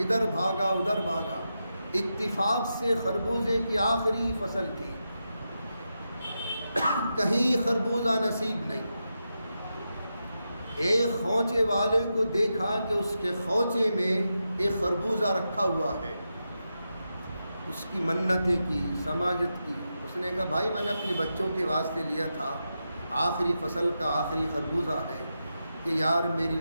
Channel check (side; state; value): both; inverted; correlation -0.88